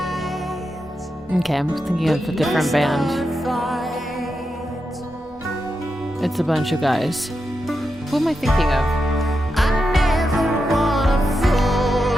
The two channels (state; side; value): normal; both; correlation 0.87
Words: Okay, I'm thinking of a different band. It's a bunch of guys. Who am I thinking of?